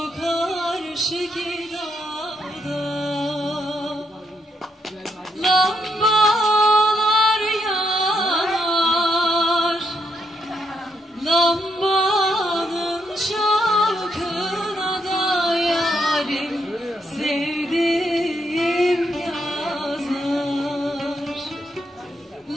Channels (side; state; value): both; normal; correlation 0.78